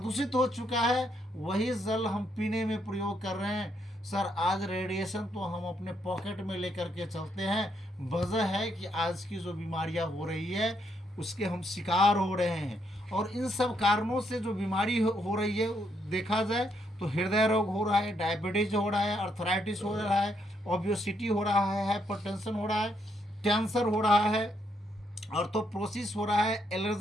हो चुका है, वही जल हम पीने में प्रयोग कर रहे हैं। सर आज रेडिएशन तो हम अपने पॉकेट में लेकर के चलते हैं। वजह है कि आज की जो बीमारियां हो रही है उसके हम शिकार हो रहे हैं, और इन सब कारणों से जो बीमारी हो रही है देखा जाए तो हृदय रोग हो रहा है, डायबिटीज हो रहा है, अर्थराइटिस हो रहा है, ओबेसिटी हो रहा है, हाइपरटेंशन हो रहा है, कैंसर हो रहा है, ऑर्थोप्रोसिस हो रहा है,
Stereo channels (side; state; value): both; normal; correlation 0.75